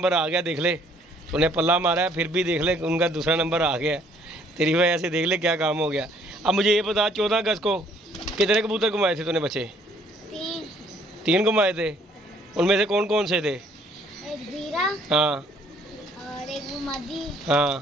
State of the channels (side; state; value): both; normal; correlation 0.62